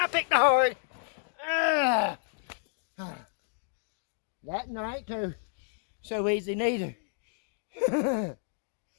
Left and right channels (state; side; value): silent; right; 57 dB below the other